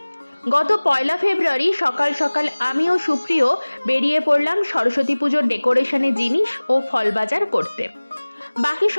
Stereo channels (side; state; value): both; inverted; correlation -1.00